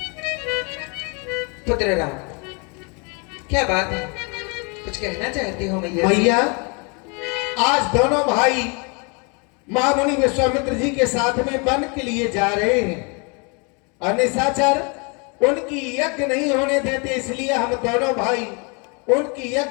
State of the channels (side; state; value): right; quieter; 32.9 dB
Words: पुत्र राम, क्या बात है, कुछ कहना चाहते हो मैया? मैया, आज दोनों भाई महामुनि विश्वामित्र जी के साथ में वन के लिए जा रहे हैं और निशाचर उनकी यज्ञ नहीं होने देते, इसलिए हम दोनों भाई उनकी